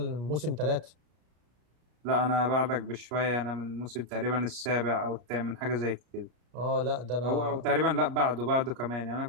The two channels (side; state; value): left; late; 33 ms